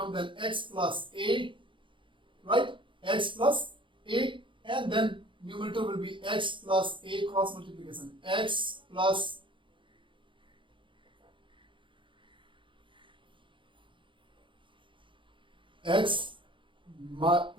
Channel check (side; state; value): left; late; 0.24 ms